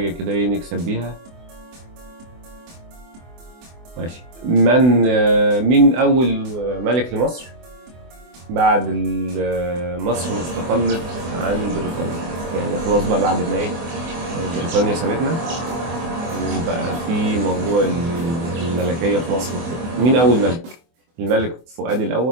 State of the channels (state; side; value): late; left; 24 ms